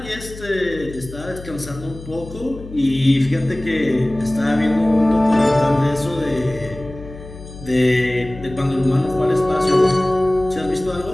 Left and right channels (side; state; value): left; noise; hum, 15 dB below the sound